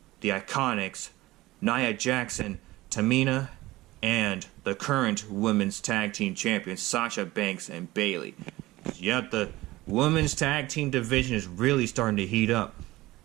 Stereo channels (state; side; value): quieter; left; 18.6 dB